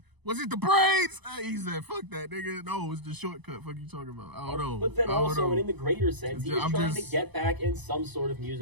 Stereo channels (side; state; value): left; late; 0.99 ms